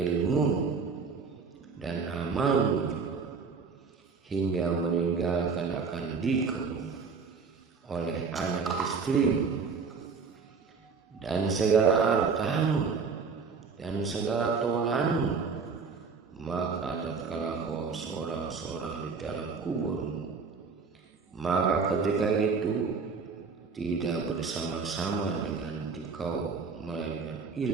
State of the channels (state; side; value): quieter; left; 5.1 dB